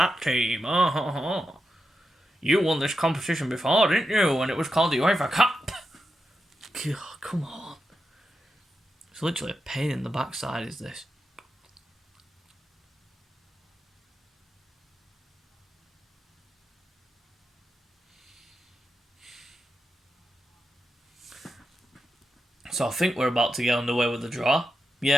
team. Oh. You won this competition before, didn't you? And it was called the UEFA Cup. God, come on. It's literally a pain in the backside, is this? So I think we're about to get underway with the draw.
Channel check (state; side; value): normal; both; correlation 0.88